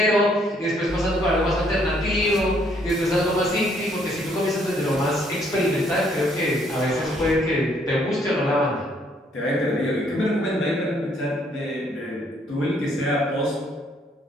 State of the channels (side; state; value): both; normal; correlation 0.67